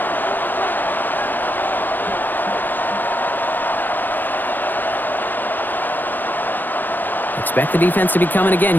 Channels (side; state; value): right; late; 0.089 ms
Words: Expect the defense to be coming again